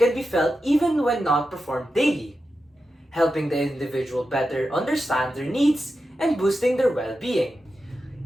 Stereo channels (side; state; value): both; normal; correlation 0.90